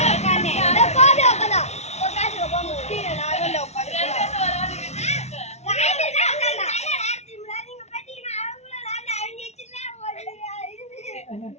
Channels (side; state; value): right; late; 0.32 ms